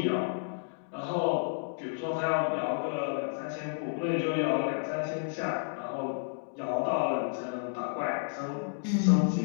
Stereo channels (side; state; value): right; silent; digital silence